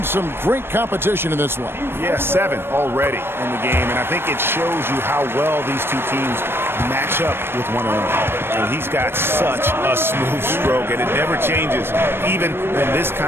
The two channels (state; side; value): late; left; 0.11 ms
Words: some great competition in this one. Yeah, 7 already in the game, and I think it shows you how well these two teams match up with one another. And he's got such a smooth stroke, and it never changes, even in this